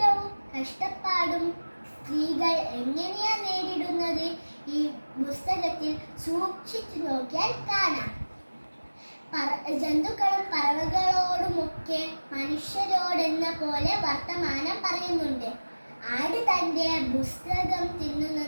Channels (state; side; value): inverted; both; correlation -1.00